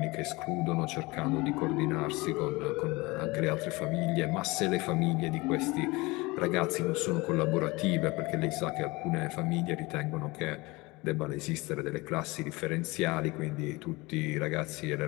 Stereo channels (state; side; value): quieter; right; 23.3 dB